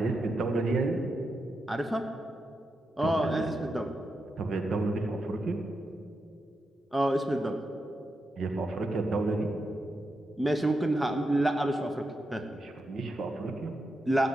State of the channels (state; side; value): normal; both; correlation 0.86